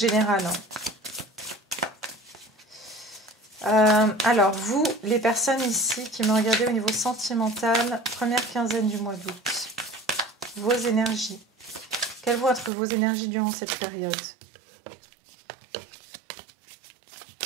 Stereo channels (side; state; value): left; drops out; at 12.7 s